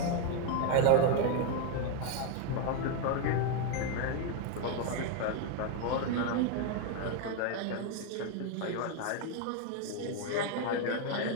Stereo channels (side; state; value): both; different; correlation 0.01